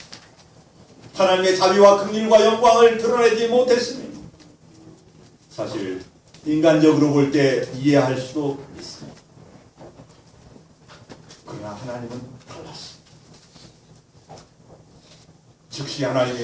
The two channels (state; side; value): identical; both; correlation 1.00